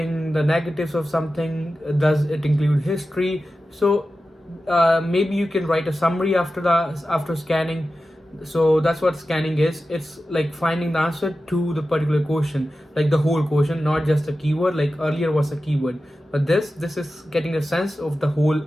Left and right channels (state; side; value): normal; both; correlation 0.93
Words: the negatives of something? Does it include history? So maybe you can write a summary after scanning. So that's what scanning is. It's like finding the answer to the particular question, like the whole question, not just a keyword. Like earlier was a keyword, but this is getting a sense of the whole